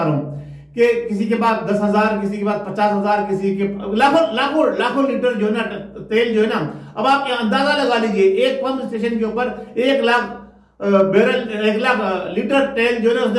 हूँ कि किसी के पास 10,000, किसी के पास 50,000, किसी के लाखों लीटर जो है ना तेल जो है ना। अब आप अंदाजा लगा लीजिए एक पंप स्टेशन के ऊपर 1 लाख बैरल 1 लाख लीटर तेल जो है ना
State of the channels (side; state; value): both; identical; correlation 1.00